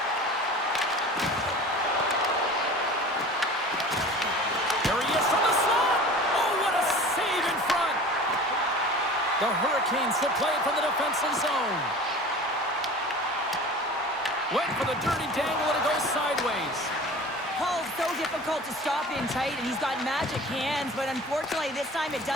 There he is from the slot. Oh, what a save in front. The Hurricanes will play it from the defensive zone. Went for the dirty dangle, and it goes sideways. Paul's so difficult to stop in tight, and he's got magic hands, but unfortunately this time it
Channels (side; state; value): both; normal; correlation 0.40